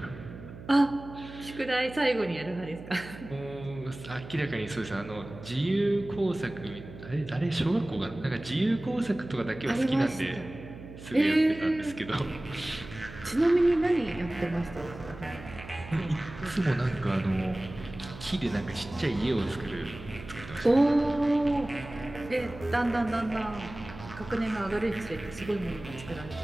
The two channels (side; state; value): right; noise; hum, 15 dB below the sound